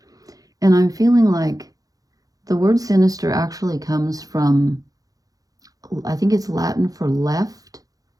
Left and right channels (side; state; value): left; late; 0.17 ms